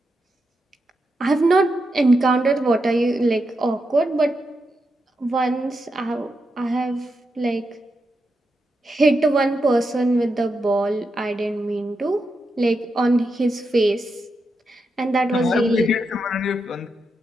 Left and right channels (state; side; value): normal; both; correlation 0.85